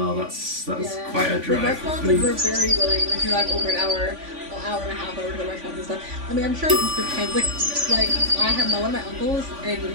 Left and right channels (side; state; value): left; late; 3.5 ms